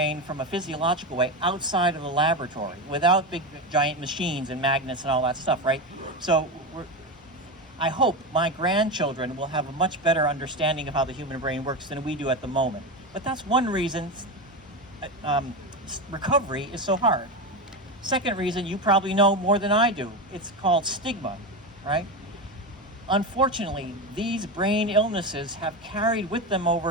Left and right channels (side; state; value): both; normal; correlation 0.18